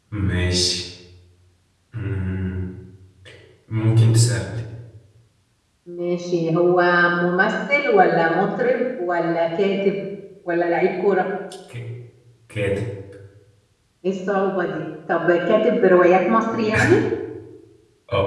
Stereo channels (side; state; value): both; identical; correlation 1.00